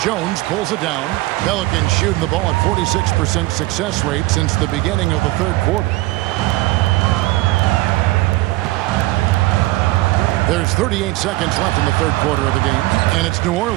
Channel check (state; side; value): quieter; left; 19.5 dB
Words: pulls it down. Pelicans shooting the ball at 46% success rate since the beginning of the third quarter. There's 38 seconds left in the third quarter of the game. And it's New